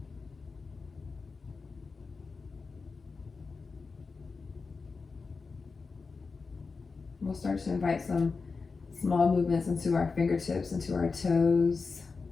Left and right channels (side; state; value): right; quieter; 4.5 dB